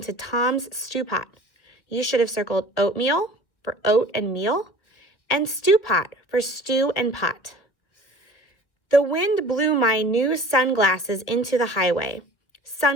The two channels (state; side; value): late; right; 1.5 ms